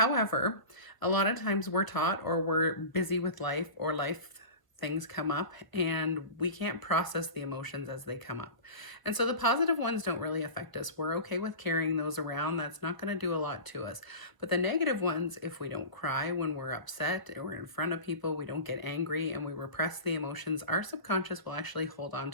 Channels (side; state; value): right; late; 1.0 ms